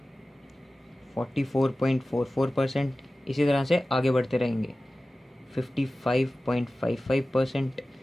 44.44%। इसी तरह से आगे बढ़ते रहेंगे। 55.55%।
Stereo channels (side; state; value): both; normal; correlation 0.96